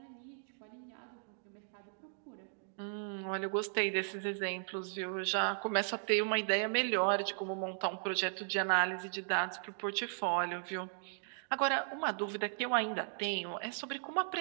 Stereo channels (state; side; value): silent; left; digital silence